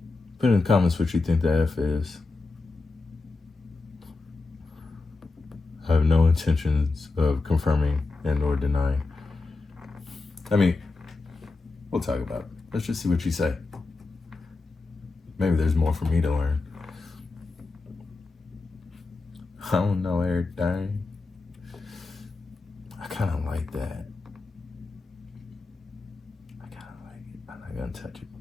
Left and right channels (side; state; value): right; quieter; 3.6 dB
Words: Put in the comments what you think the F is. I have no intentions of confirming and or denying. I mean, we'll talk about it. Let's just see what you say. Maybe there's more for me to learn. I don't know everything. I kind of like that. I kind of like it. I'm not going to touch it.